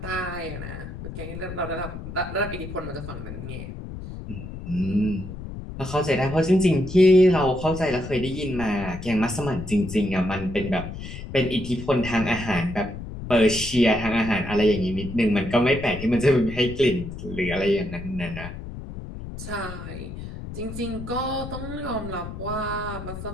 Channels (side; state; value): left; noise; rumble, 10 dB below the sound